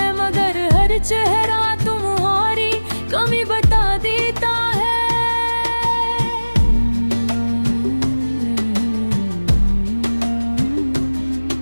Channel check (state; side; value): inverted; both; correlation -1.00